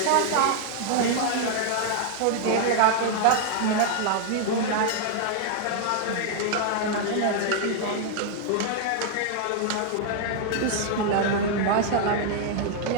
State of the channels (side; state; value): both; different; correlation 0.00